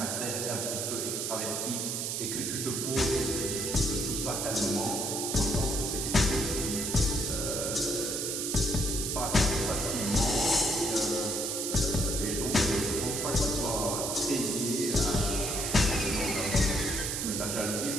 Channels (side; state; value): right; noise; hiss, 1 dB below the sound